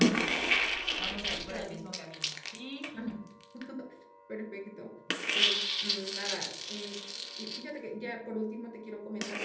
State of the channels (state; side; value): identical; both; correlation 1.00